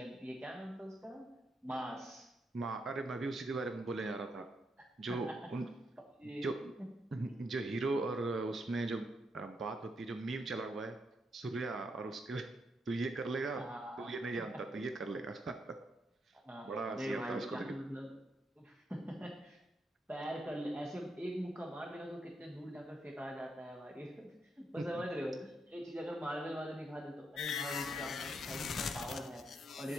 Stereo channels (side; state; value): both; normal; correlation 0.79